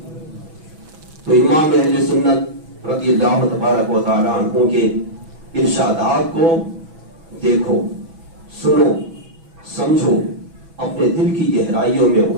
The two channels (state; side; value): late; left; 6.1 ms